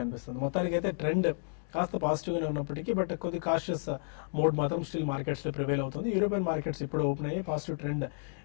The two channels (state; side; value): silent; right; digital silence